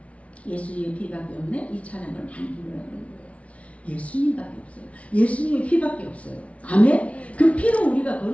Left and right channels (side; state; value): right; late; 0.064 ms